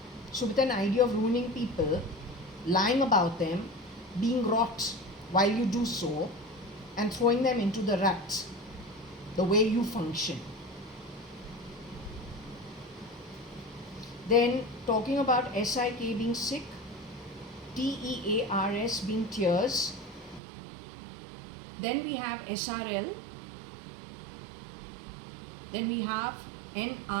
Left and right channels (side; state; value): left; drops out; at 20.4 s